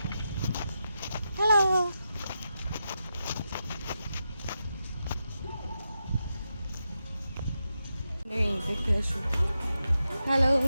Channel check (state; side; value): inverted; both; correlation -0.88